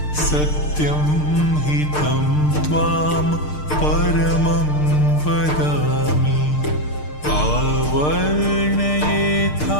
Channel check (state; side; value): late; right; 6.6 ms